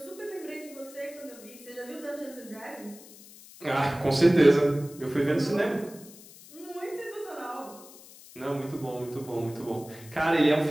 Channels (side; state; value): left; noise; hiss, 20 dB below the sound